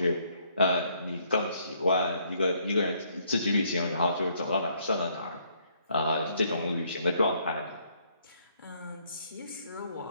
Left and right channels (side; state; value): both; inverted; correlation -0.69